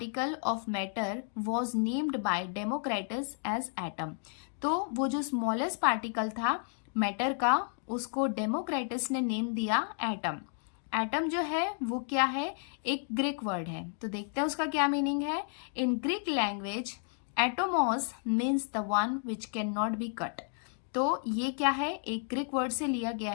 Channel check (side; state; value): right; silent; 56 dB below the other